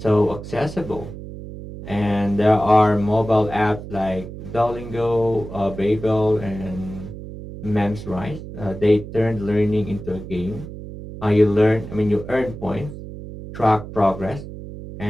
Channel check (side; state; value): right; noise; hum, 11 dB below the sound